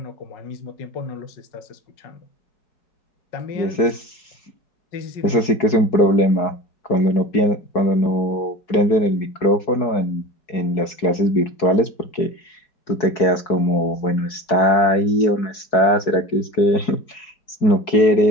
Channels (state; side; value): late; right; 4.7 ms